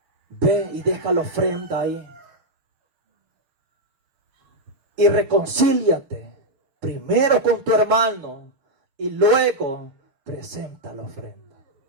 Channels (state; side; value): late; left; 6.7 ms